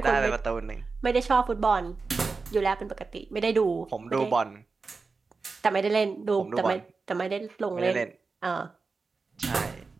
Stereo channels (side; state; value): left; quieter; 4.3 dB